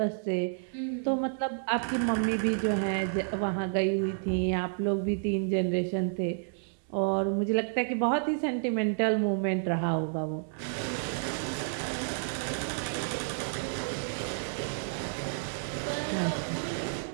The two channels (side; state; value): left; silent; digital silence